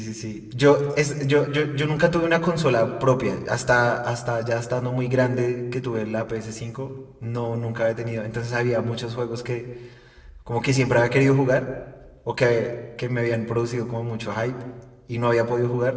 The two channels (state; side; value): identical; both; correlation 1.00